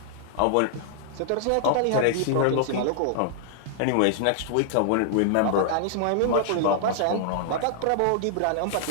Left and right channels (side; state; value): both; different; correlation -0.01